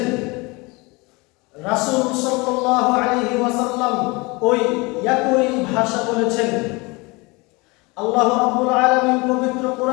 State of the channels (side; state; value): right; quieter; 25.8 dB